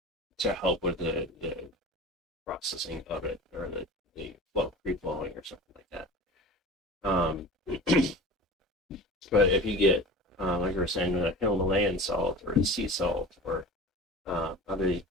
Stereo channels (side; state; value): both; normal; correlation 0.36